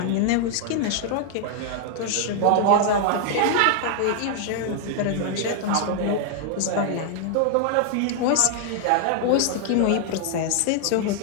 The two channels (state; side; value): different; both; correlation 0.00